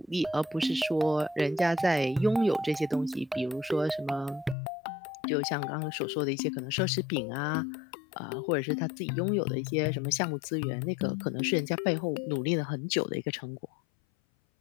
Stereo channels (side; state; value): right; drops out; at 4.5 s